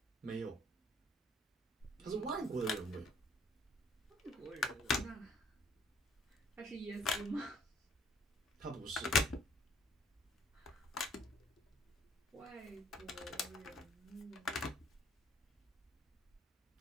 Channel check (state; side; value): normal; both; correlation 0.61